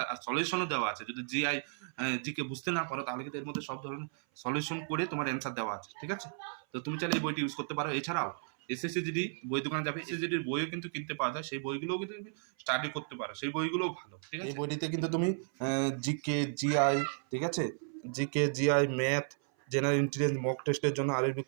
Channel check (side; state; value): left; silent; 55 dB below the other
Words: আর সলিউশনও দেওয়া আছে। যদি জিকে বুঝতে না পারো, তাহলে কিন্তু এর মধ্যে সব ধরনের সলিউশন করে তোমার অ্যান্সার দেওয়া আছে, ঠিক আছে। তো তুমি চাইলে এই বইটি ইউজ করতে পারো। এছাড়াও এসএসসি জিডি বই দোকানে যাবে, এসএসসি জিডির বইও কিন্তু কিনতে পাওয়া যায়, সেই বইগুলোও কিন্তু তুমি স্টাডি করতে পারো, সেই বইগুলোও ভালো, ঠিক আছে। এই বইটিতে কিন্তু তুমি জিকে জিআই, ঠিক আছে, GK GI math, general intelligence, mock টেস্টের জন্য আরবি